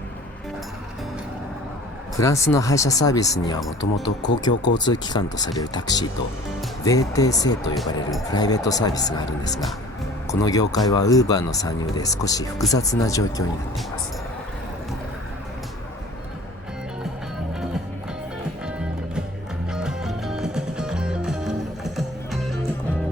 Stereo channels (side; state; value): both; normal; correlation 0.45